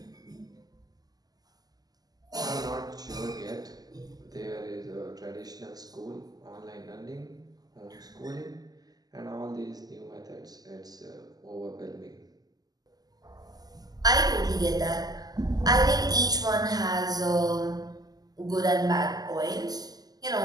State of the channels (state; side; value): late; left; 0.18 ms